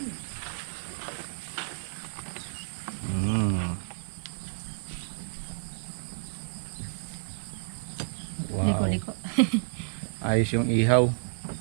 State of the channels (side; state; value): left; silent; digital silence